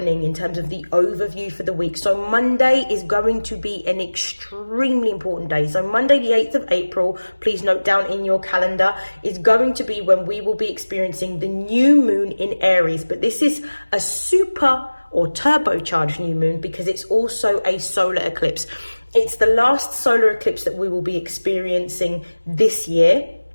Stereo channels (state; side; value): inverted; both; correlation -1.00